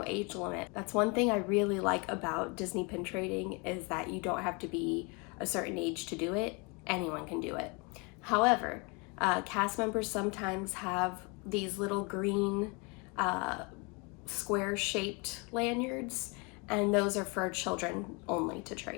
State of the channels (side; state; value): right; quieter; 30.7 dB